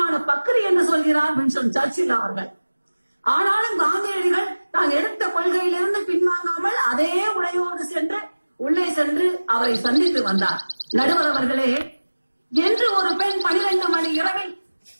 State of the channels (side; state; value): both; inverted; correlation -1.00